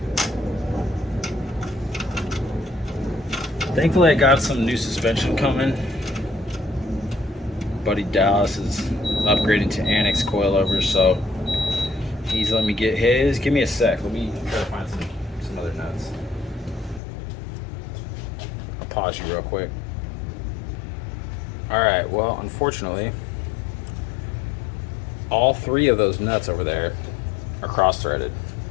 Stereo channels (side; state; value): right; drops out; at 17.0 s